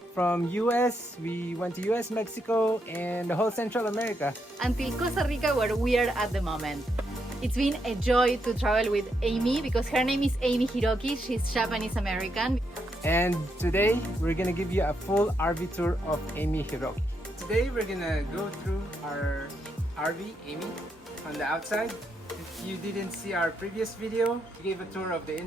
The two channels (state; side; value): normal; both; correlation 0.80